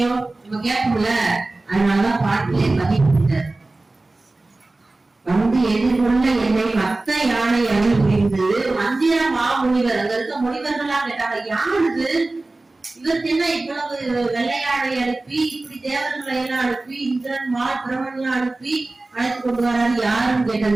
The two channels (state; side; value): quieter; left; 3.1 dB